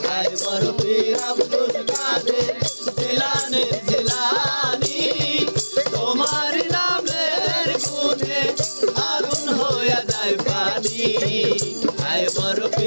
হায় বড় পীর আব্দুল কাদের জিলানের জিলানি তোমার নামের গুণে আগুন হইয়া যায় পানি হায় বড়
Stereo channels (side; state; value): both; inverted; correlation -1.00